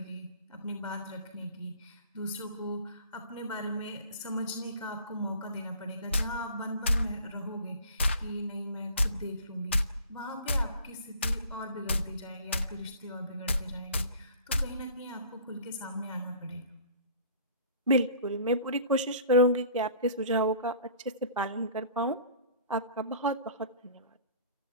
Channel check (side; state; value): both; inverted; correlation -0.46